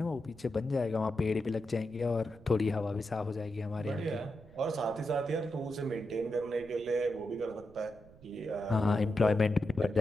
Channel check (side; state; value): right; noise; rumble, 23 dB below the sound